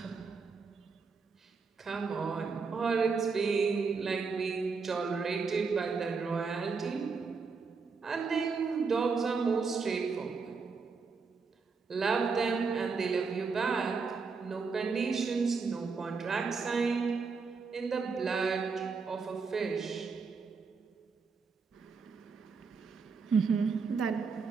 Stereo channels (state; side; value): quieter; left; 5.0 dB